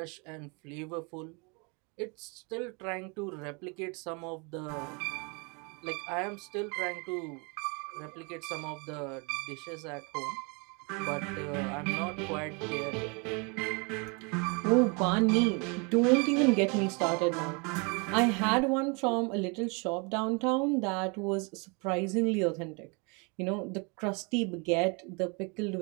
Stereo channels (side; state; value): left; quieter; 32.2 dB